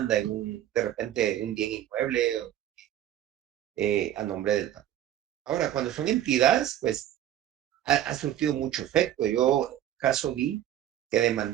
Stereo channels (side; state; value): left; quieter; 11.9 dB